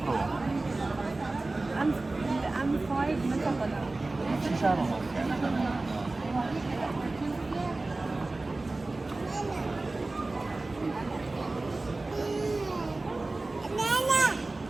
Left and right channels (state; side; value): quieter; left; 3.1 dB